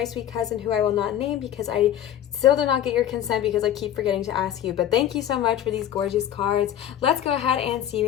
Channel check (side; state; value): right; quieter; 10.9 dB